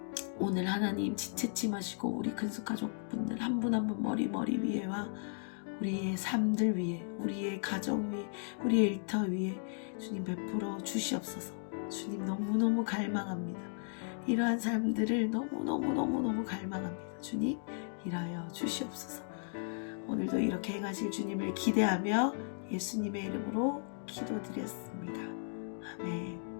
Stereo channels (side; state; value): right; silent; digital silence